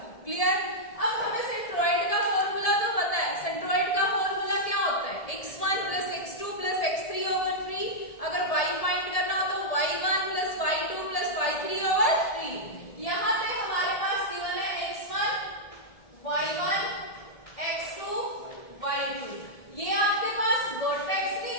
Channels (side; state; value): right; late; 1.7 ms